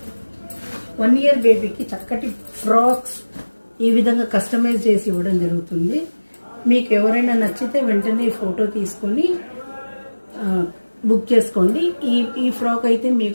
1 ఇయర్ బేబీకి చక్కటి ఫ్రాక్స్ ఈ విధంగా కస్టమైజ్ చేసి ఇవ్వడం జరుగుతుంది. మీకు ఎవరైనా నచ్చితే వెంటనే ఫోటో తీసుకొని బుక్ చేసుకోండి. ఈ ఫ్రాక్ అయితే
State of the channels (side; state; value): both; inverted; correlation -1.00